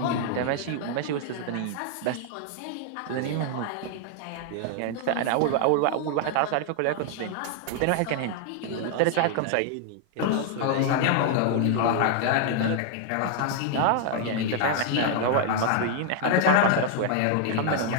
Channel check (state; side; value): different; both; correlation 0.00